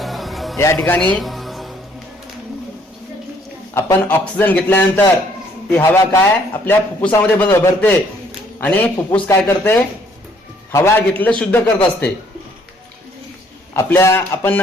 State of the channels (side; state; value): both; normal; correlation 0.64